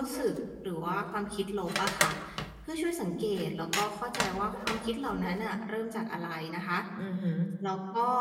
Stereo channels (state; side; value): identical; both; correlation 1.00